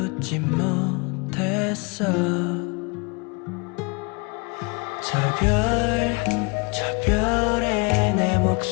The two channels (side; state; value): right; quieter; 30.0 dB